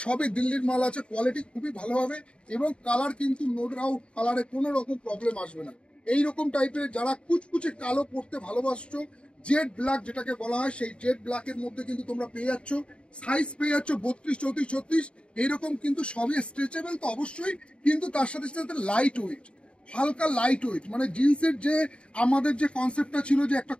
সবই দিল্লির মাল আছে, কোয়ালিটি খুবই ভালো হবে এবং কালার কিন্তু নো ডাউট কালারে কোনো রকম প্রবলেম আসবে না। এইরকম টাইপের যারা কুচকুচে কালো পরতে ভালোবাসছো, জেড ব্ল্যাক যেটাকে বলা হয়, সেই জেড ব্ল্যাকের মধ্যে কিন্তু তোমরা পেয়ে যাচ্ছ। সাইজ পেয়ে যাচ্ছ 32, 34, 36, এইরকম কিন্তু সবই স্ট্রেচেবল তো অবশ্যই, কিন্তু তার সাথে সাথে লাইট ওয়েট, হালকা লাইট ওয়েট। মানে জিন্সের যে আমাদের যে কনসেপ্টটা ছিল যে একটা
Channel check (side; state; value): right; late; 0.057 ms